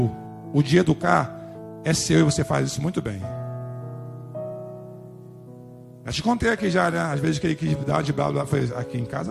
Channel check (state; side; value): identical; both; correlation 1.00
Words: O de educar é seu e você faz isso muito bem. Eu te contei aqui já, né? Às vezes que ele quis dar de bravo. Aqui em